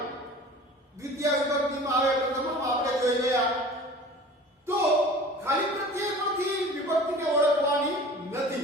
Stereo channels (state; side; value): normal; both; correlation 0.42